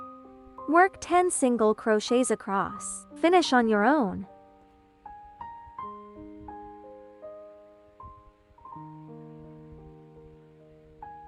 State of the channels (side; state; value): both; identical; correlation 1.00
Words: Work 10 single crochets across. Finish on your own.